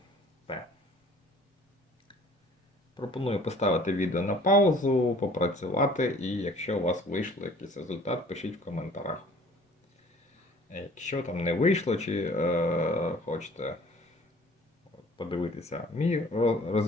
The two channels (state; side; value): normal; both; correlation 0.51